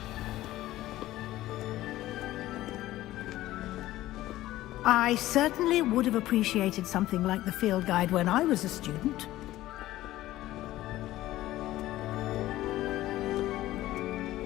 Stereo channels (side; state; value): right; quieter; 15.5 dB